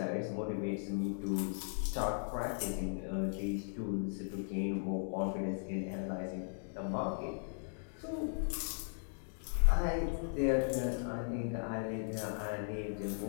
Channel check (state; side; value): silent; right; digital silence